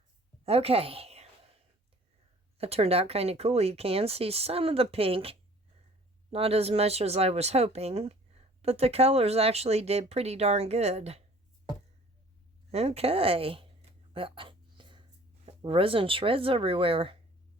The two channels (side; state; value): both; normal; correlation 0.51